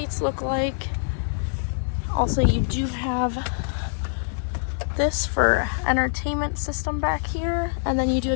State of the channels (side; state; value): right; silent; digital silence